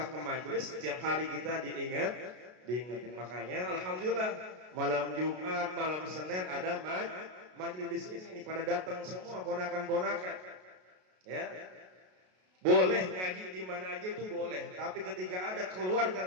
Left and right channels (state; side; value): late; left; 33 ms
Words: ke majelis, setiap hari kita diingetin. Makanya alhamdulillah malam Jumat, malam Senin ada majelis di sini. Ini pada datang semua ponakan-ponakan. Ya. Boleh ngaji di mana aja itu boleh, tapi ketika ada keluarga